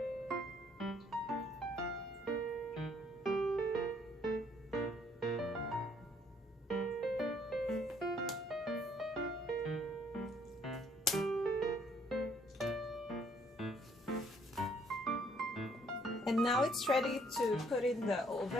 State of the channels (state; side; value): normal; both; correlation 0.65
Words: And now it's ready to put in the